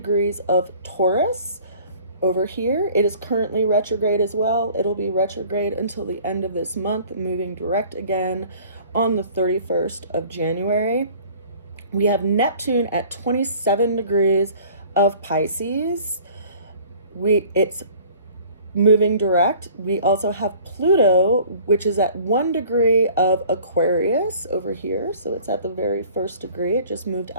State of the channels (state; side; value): inverted; both; correlation -0.50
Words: of Taurus over here. It is currently retrograde as well. It'll be retrograde until the end of this month, moving direct again on the 31st of January. We have Neptune at 27 degrees of Pisces. It's moving direct. We also have Pluto, which is at 1 degree of Aquarius over here. So it's at the very first degree. It just moved